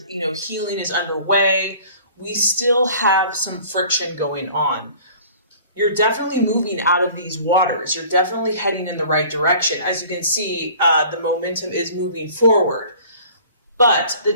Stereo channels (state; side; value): inverted; both; correlation -0.48